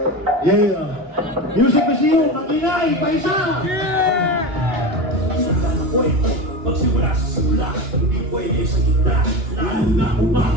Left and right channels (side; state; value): left; late; 3.0 ms